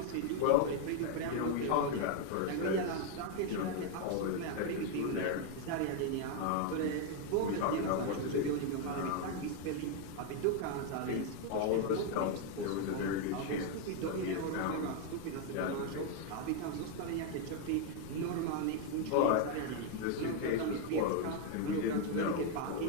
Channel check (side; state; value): both; different; correlation 0.01